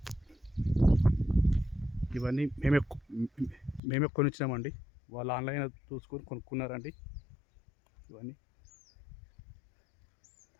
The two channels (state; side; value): drops out; right; at 3.8 s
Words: ఇవన్నీ మేమే కొనిచ్చినామండి. వాళ్ళు ఆన్లైన్ చూసుకొని కొనుక్కున్నారండి. ఇవన్నీ